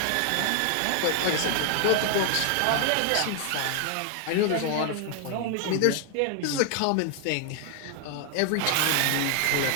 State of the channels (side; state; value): both; different; correlation 0.00